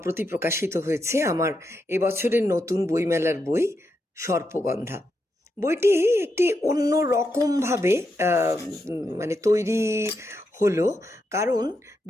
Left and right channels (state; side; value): normal; both; correlation 0.83